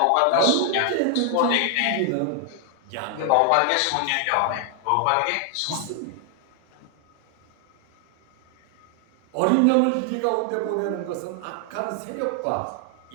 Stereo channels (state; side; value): different; both; correlation 0.00